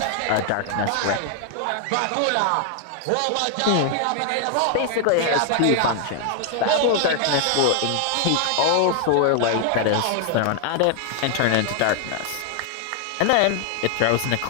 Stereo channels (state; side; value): different; both; correlation 0.00